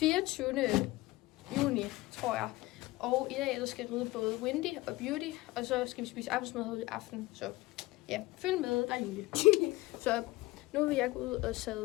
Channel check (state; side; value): quieter; right; 19.6 dB